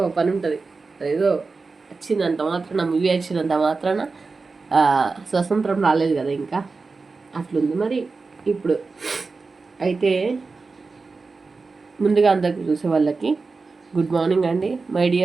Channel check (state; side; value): quieter; left; 4.2 dB